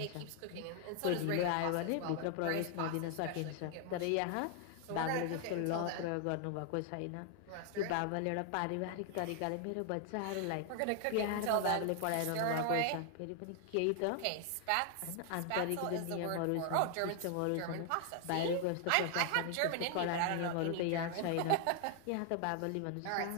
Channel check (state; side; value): different; both; correlation 0.00